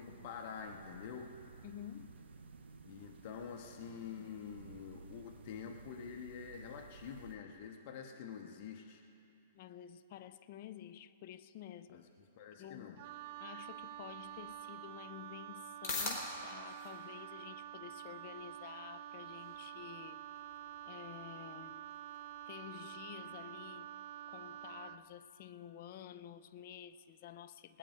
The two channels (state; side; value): inverted; both; correlation -0.31